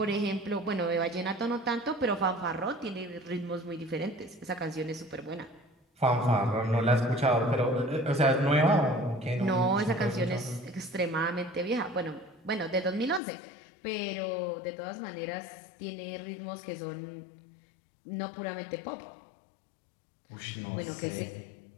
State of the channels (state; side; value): drops out; right; at 13.2 s